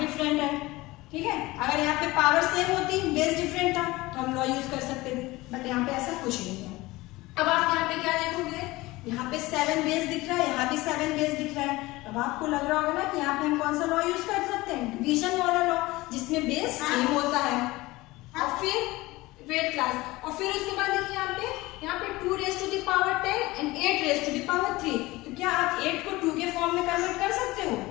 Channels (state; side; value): quieter; right; 20.2 dB